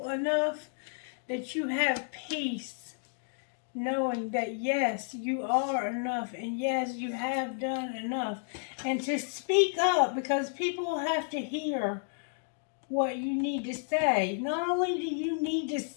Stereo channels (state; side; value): silent; right; 57 dB below the other